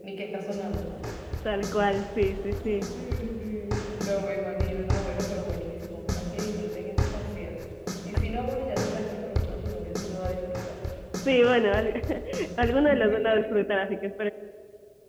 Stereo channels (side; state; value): both; identical; correlation 1.00